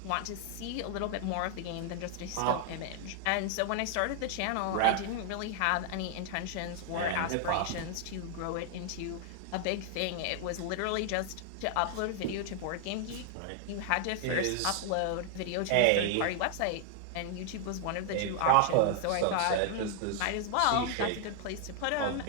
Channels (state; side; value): different; both; correlation 0.00